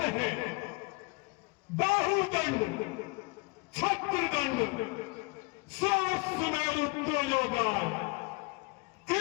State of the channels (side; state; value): right; quieter; 28.0 dB